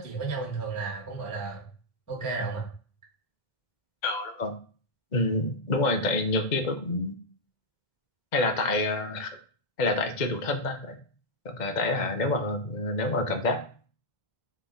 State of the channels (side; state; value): right; late; 2.1 ms